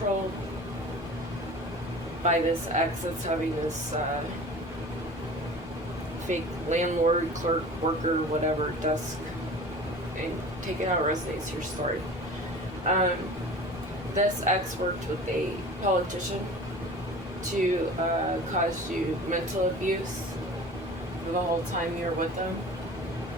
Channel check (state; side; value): normal; both; correlation 0.40